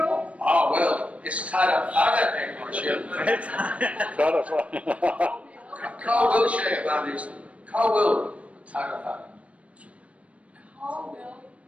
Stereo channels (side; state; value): left; late; 0.064 ms